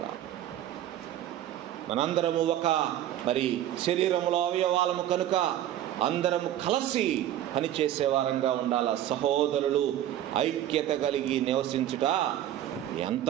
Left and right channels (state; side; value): quieter; left; 12.2 dB